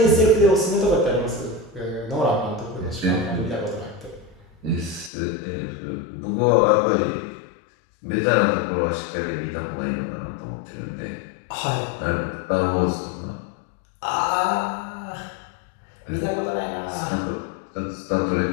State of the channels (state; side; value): drops out; right; at 5.1 s